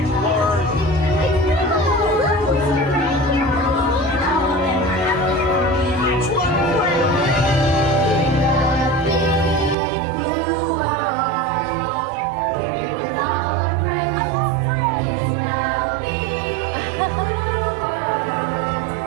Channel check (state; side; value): drops out; left; at 9.8 s